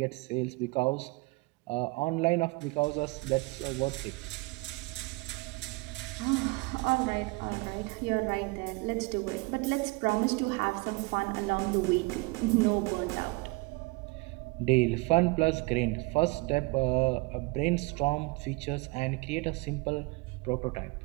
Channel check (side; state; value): left; quieter; 26.0 dB